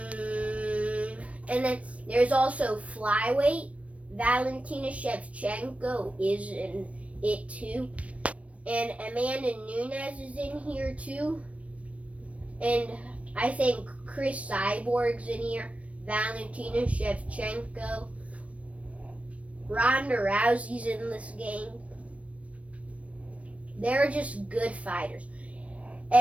And then there's also flyweight. Valentina Shevchenko is in it too. And Amanda Nunes is in here too. And I think Chris Cyborg's in here. Valentina Shevchenko. Ronda Rousey's in this game. They're just good fighters.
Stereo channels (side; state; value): left; late; 0.064 ms